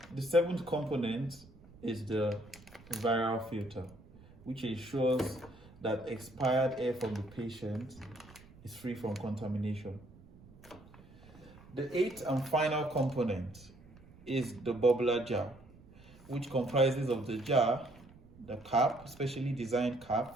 The seventh component is the viral filter, which ensures that expired air from the patient is free from contamination. The eighth and final component is the bubbler jar, which comprises of the jar, the cap, specially designed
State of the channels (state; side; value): noise; right; rumble, 23 dB below the sound